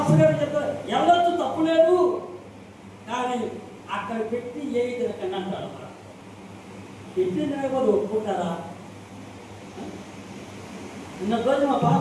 గారు చెప్తారు వెళ్ళొచ్చు తప్పు లేదు, కానీ అక్కడ పెట్టి ఏ తినకండి అంటాడు. పెట్టిన కూడా ఒప్పుకుంటారా? నిన్న రోజు మా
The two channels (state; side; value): identical; both; correlation 1.00